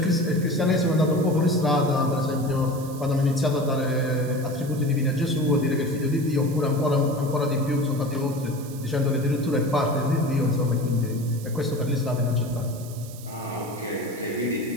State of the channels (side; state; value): right; noise; hiss, 18 dB below the sound